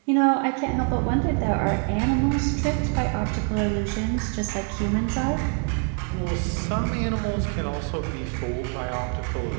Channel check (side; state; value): left; quieter; 39.4 dB